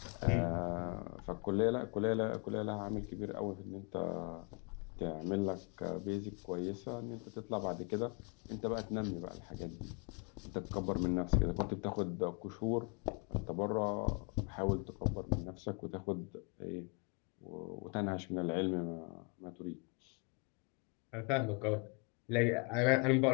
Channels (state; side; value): quieter; right; 33.7 dB